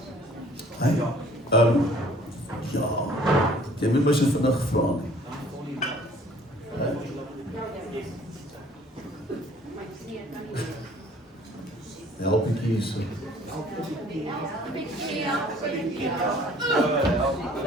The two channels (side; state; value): both; normal; correlation 0.54